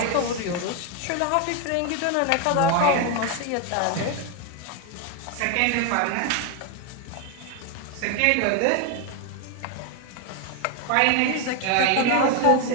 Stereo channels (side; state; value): both; different; correlation 0.01